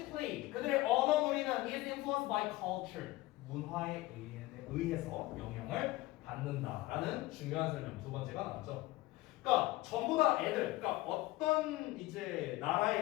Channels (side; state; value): right; quieter; 18.6 dB